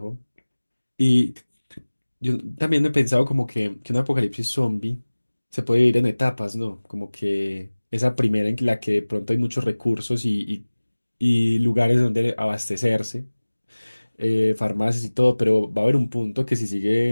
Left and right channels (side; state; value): both; inverted; correlation -1.00